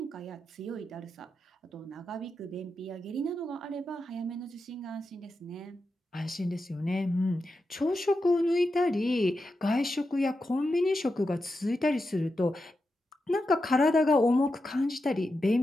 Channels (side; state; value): both; normal; correlation 0.88